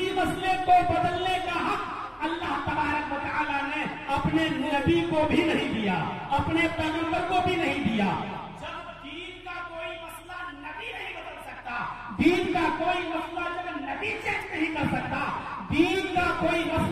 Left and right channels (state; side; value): identical; both; correlation 1.00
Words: مسئلے کو بدلنے کا حق اللہ تبارک و تعالیٰ نے اپنے نبی کو بھی نہیں دیا، اپنے پیغمبر کو بھی نہیں دیا. جب دین کا کوئی مسئلہ نبی نہیں بدل سکتا، دین کا کوئی مسئلہ جب نبی چینج نہیں کر سکتا، دین کا کوئی